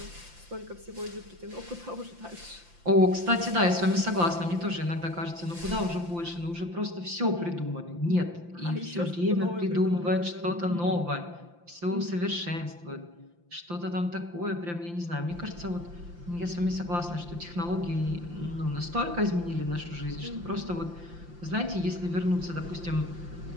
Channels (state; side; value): late; left; 5.8 ms